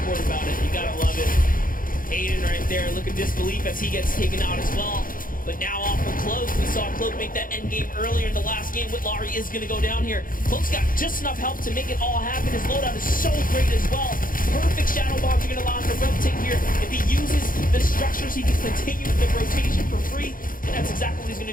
about it. You got to love it. Aiden right there looking disbelief as he gets taken out as well. But now off of Cloak, we saw Cloak make that end game earlier in the last game. Whitlory is going to go down here. Cloak's got just enough help to make it all happen. His loadout is so great as well. Perfect shadow bombs are going to allow him to rotate here. If he uses the structures, he can continue the rotation for free. And that's exactly what he's going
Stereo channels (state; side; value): late; right; 0.40 ms